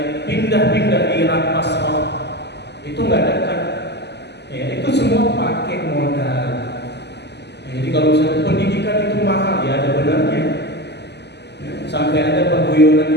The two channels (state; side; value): late; right; 0.50 ms